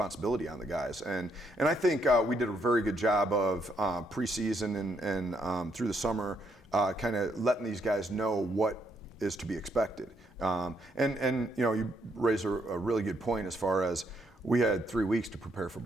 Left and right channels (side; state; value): both; normal; correlation 0.74